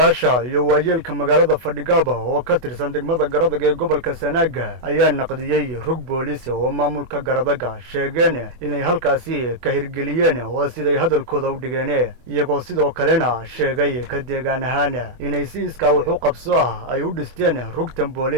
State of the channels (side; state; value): left; late; 24 ms